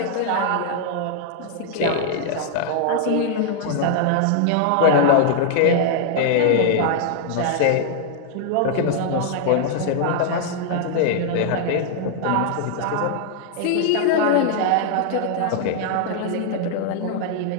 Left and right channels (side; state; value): both; different; correlation -0.01